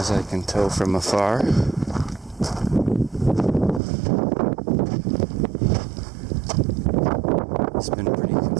I can tell from afar. It's been pretty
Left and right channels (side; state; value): left; drops out; at 3.8 s